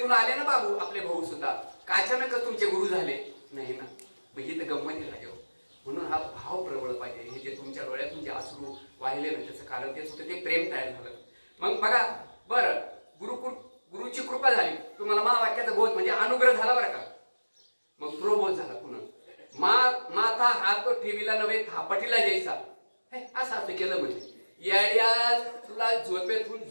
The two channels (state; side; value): inverted; both; correlation -1.00